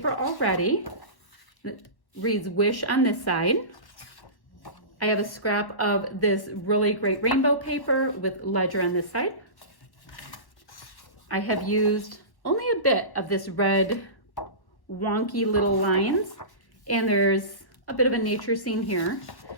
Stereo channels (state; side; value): late; right; 1.1 ms